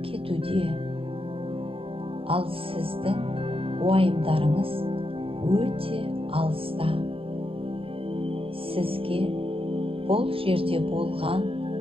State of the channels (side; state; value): left; late; 0.27 ms